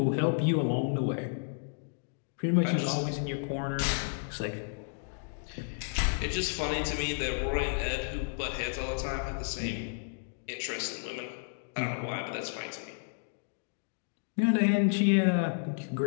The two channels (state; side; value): silent; right; digital silence